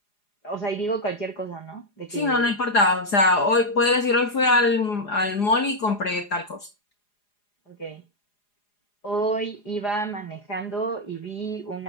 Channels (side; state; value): right; late; 4.9 ms